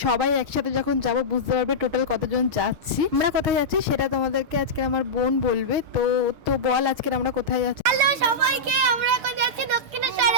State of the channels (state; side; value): late; left; 6.7 ms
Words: সবাই একসাথে যখন যাব বুঝতে পারবে টোটাল কতজন যাচ্ছি। আমরা কোথায় যাচ্ছি সেটা তোমাদেরকে আজকে আমার বোন বলবে। তো তো বল আজকে আমরা কোথায় যাচ্ছি। হ্যালো সবাইকে, আমরা এখন যাচ্ছি